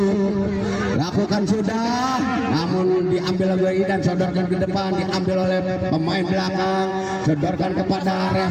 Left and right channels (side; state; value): both; identical; correlation 1.00